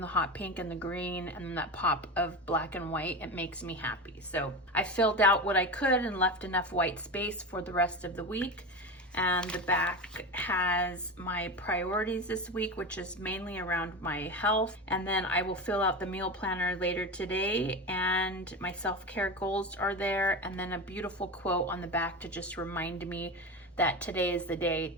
hot pink and the green and that pop of black and white. It makes me happy. So I filled out what I could and left enough white space for the rest of the week. And the back has my priorities this week, which is mainly around my health. And then I will fill out the meal planner later today, and my self-care goals are there. And then a beautiful quote on the back to just remind me that today is the day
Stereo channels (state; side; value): normal; both; correlation 0.23